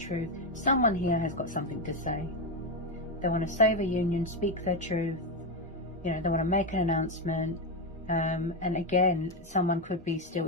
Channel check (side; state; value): both; normal; correlation 0.09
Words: Someone here has got something to say. They want to save a union, speak their truth, you know, they want to make an announcement. And again, someone could be still